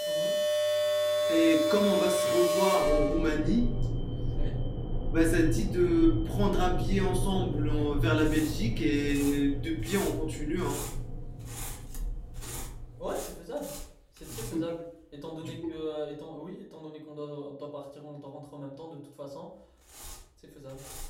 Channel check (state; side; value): identical; both; correlation 1.00